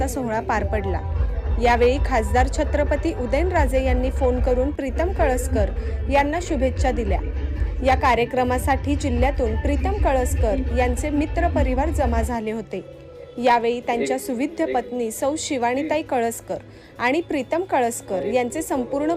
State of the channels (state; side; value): identical; both; correlation 1.00